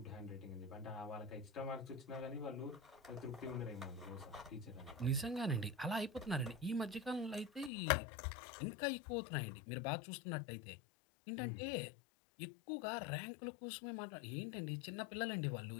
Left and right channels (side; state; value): right; drops out; at 7.7 s